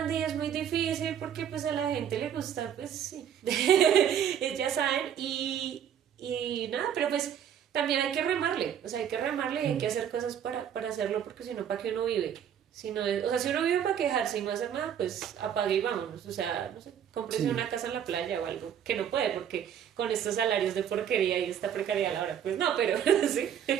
y es muy difícil porque pues a la gente le gusta, pues sí, ya saben, y nada, pero pues también hay que remarle, o sea, hay que remarle y hay que hacer cosas para hacerlo, porque si no, ¿para qué uno vive? Si no o sea, si uno vive para quejarse y no hacer nada, pues apague y vámonos, o sea, no sé, cómprese Sí. una casa en la playa o algo, que no puede, porque con estos salarios de porquería y esta precariedad a la hora, pues no, pero sí,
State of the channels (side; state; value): left; quieter; 9.1 dB